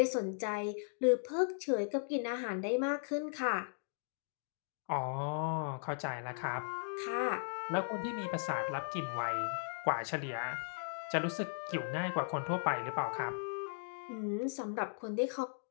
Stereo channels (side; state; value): right; silent; digital silence